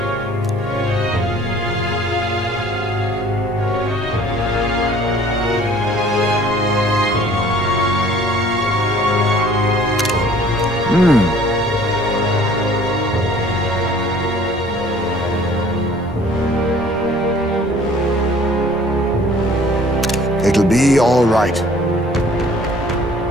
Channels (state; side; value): normal; both; correlation 0.53